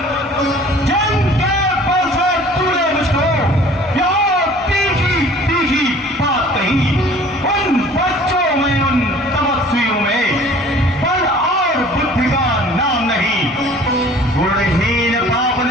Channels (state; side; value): normal; both; correlation 0.50